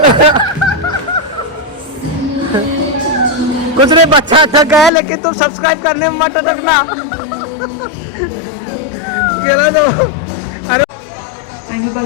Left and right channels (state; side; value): drops out; right; at 4.9 s